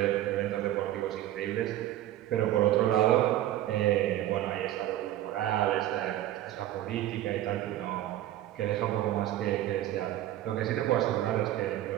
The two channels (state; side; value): quieter; left; 13.5 dB